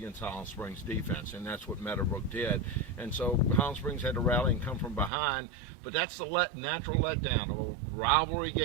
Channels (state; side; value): drops out; left; at 5.1 s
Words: Highland Springs defense, and that's what Meadowbrook did. And so Highland Springs had to rally and come from behind, but that's the natural letdown of a rivalry